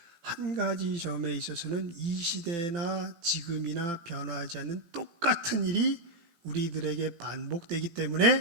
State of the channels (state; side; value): late; left; 17 ms